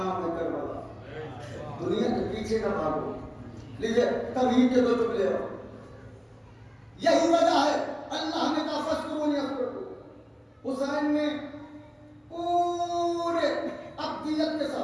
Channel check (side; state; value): both; identical; correlation 1.00